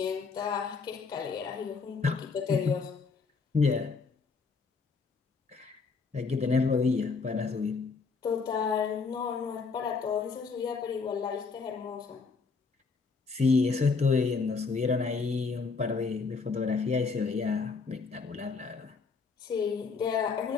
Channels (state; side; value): quieter; right; 4.8 dB